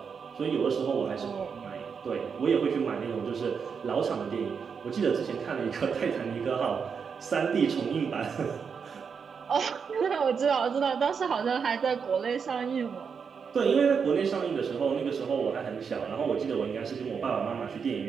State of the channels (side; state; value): left; quieter; 6.2 dB